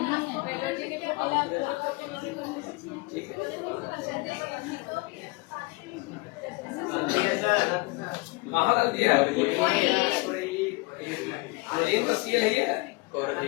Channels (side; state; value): right; quieter; 25.8 dB